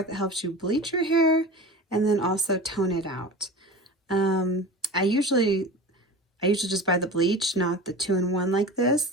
that helps you bleach your hair and then also tone it out. Um, I usually just buy the bleach, not the 2-in-1 like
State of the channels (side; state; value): both; normal; correlation 0.33